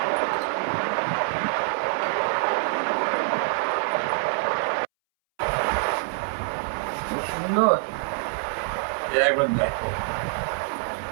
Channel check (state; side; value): silent; left; 61 dB below the other